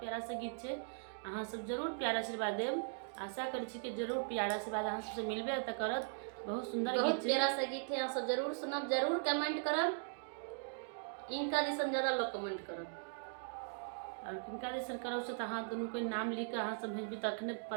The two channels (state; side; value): silent; left; digital silence